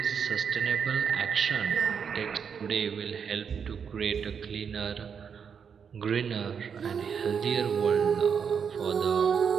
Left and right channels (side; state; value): left; quieter; 6.9 dB